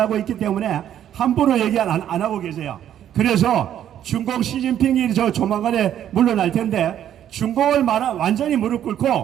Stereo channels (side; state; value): left; quieter; 10.6 dB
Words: 있기 때문에 함부로 얘기 안 하고 계세요. 그래서 중국 시진핑이 조만간에 물러날 텐데 중국을 완전히 무릎